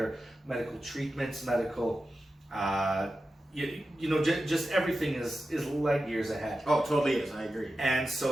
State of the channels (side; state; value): both; normal; correlation 0.92